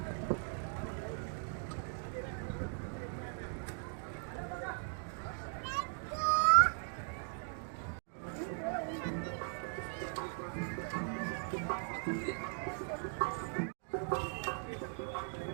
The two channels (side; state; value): left; silent; 52 dB below the other